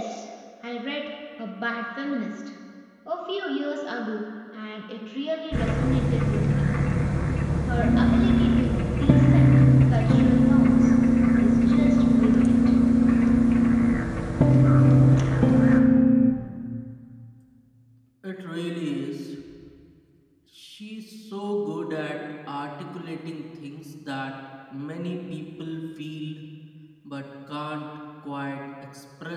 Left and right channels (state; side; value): identical; both; correlation 1.00